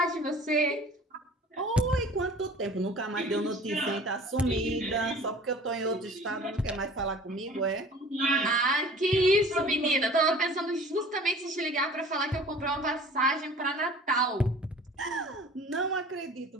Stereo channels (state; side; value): normal; both; correlation 0.46